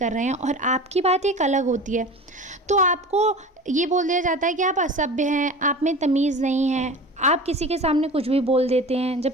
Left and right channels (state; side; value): normal; both; correlation 0.35